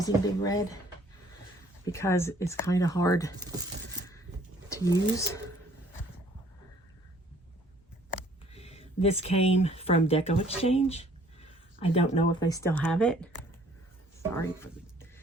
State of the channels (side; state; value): both; normal; correlation 0.58